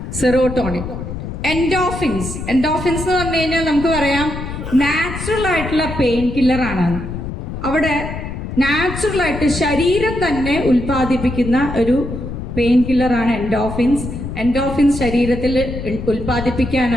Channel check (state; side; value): noise; left; rumble, 7 dB below the sound